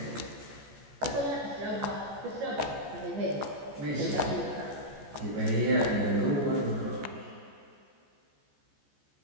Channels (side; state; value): left; late; 14 ms